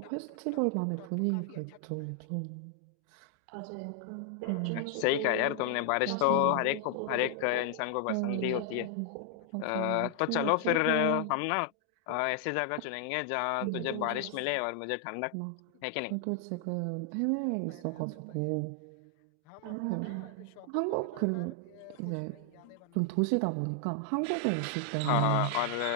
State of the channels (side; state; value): both; different; correlation 0.00